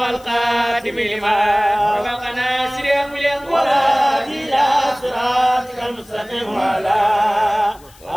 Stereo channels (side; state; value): left; noise; hiss, 26 dB below the sound